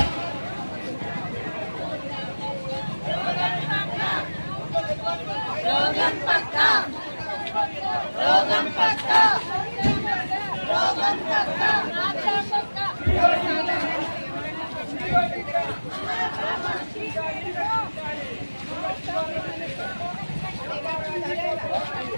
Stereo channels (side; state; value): both; inverted; correlation -1.00